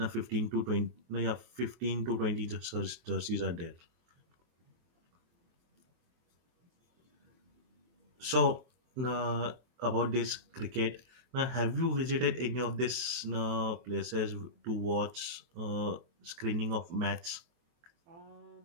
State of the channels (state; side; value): late; left; 23 ms